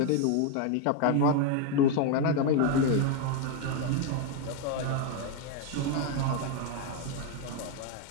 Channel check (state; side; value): different; both; correlation 0.01